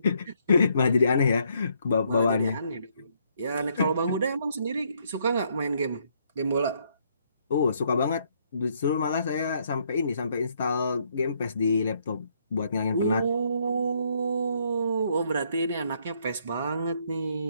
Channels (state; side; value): inverted; both; correlation -0.71